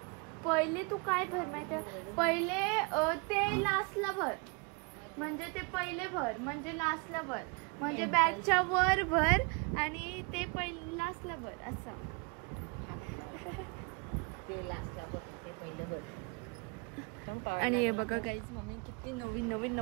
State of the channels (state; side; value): quieter; left; 31.4 dB